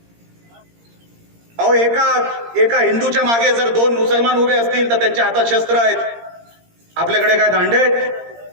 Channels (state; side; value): late; left; 17 ms